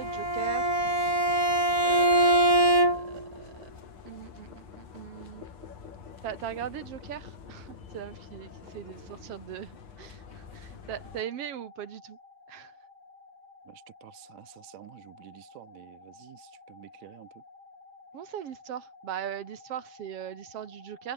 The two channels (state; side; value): late; left; 7.4 ms